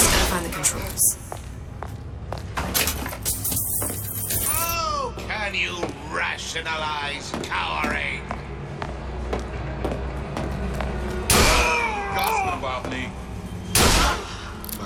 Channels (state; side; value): identical; both; correlation 1.00